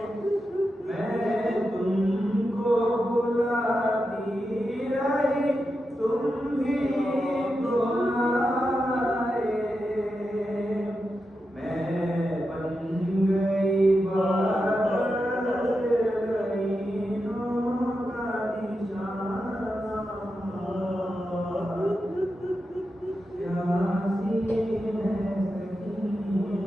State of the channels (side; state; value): both; normal; correlation 0.89